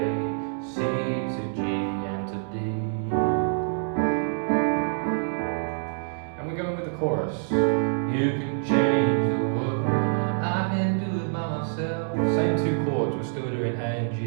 C to G and to D. And we're going with the chorus. You can change the world, I can do it by myself. Same 2 chords, we're still doing A and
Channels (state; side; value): silent; left; digital silence